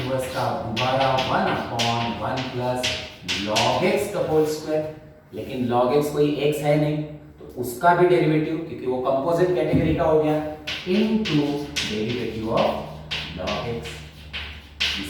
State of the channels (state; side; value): identical; both; correlation 1.00